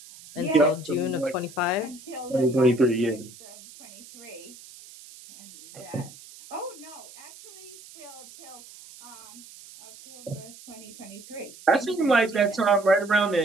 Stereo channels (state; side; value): noise; right; hiss, 19 dB below the sound